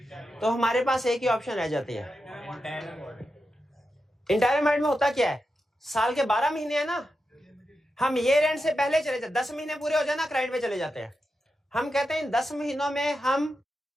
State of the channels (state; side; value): normal; both; correlation 0.89